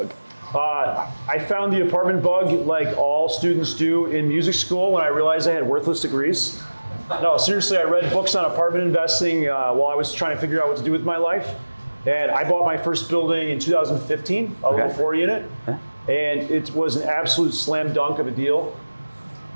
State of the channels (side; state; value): both; inverted; correlation -1.00